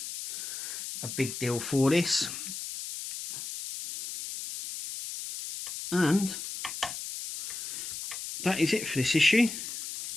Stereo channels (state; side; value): noise; left; hiss, 7 dB below the sound